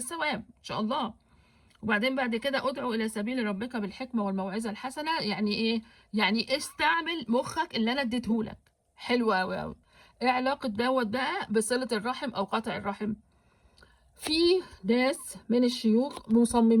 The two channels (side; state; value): both; identical; correlation 1.00